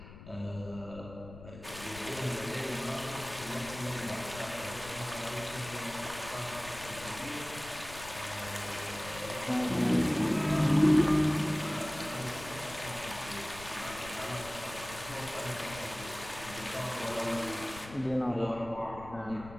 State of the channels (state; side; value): noise; left; rumble, 15 dB below the sound